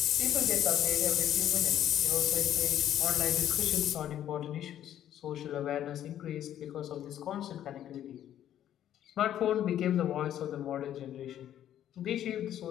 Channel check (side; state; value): right; quieter; 11.2 dB